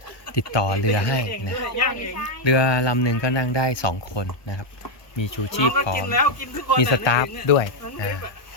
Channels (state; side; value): late; right; 1.2 ms